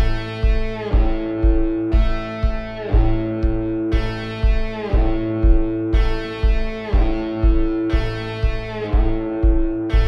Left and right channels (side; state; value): both; identical; correlation 1.00